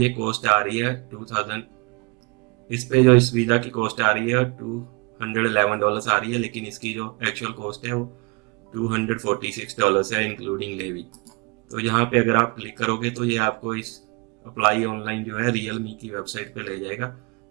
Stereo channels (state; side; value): quieter; left; 30.4 dB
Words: कॉस्ट आ रही है 2000, इस पे जो इस वीज़ा की कॉस्ट आ रही है $211 आ रही है, लेकिन इसकी जो एक्चुअल कॉस्ट है वो $246 है इंक्लूडिंग लेवी। तो यहाँ पे अगर आप क्लिक करोगे तो ये आपको इस अप्लाई ऑनलाइन जो है रियलमी की वेबसाइट पे ले जाएगा